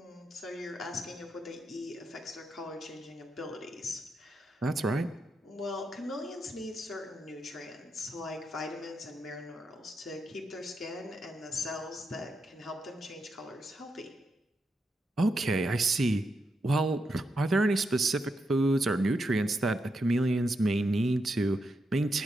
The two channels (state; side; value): normal; both; correlation 0.84